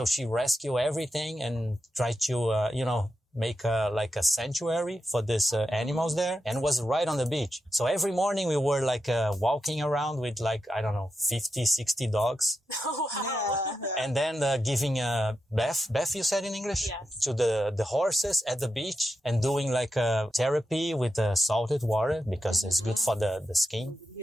she rescued everything and tried to, make like a sanctuary for these animals there, and was right on the beach. So every morning we were like walking around with 50, 60 dogs. Oh, wow. Yeah. And then giving bath, you said in English? Yes. To the horses at the beach, and doing like therapy with salted water because it's good for the skin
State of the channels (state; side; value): normal; both; correlation 0.88